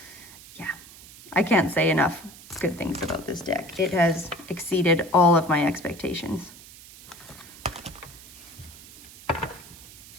can't say enough good things about this deck. It has exceeded all of my expectations.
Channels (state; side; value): noise; right; hiss, 19 dB below the sound